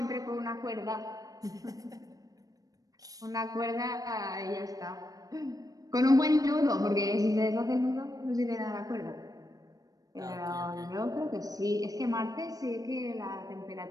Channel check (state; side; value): late; left; 0.18 ms